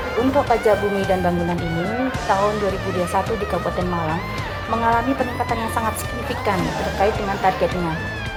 Untuk pajak bumi dan bangunan ini, tahun 2021 di Kabupaten Malang mengalami peningkatan yang sangat signifikan terkait dengan targetnya.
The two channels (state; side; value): identical; both; correlation 1.00